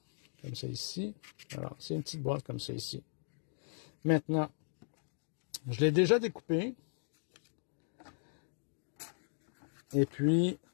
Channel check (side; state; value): right; silent; digital silence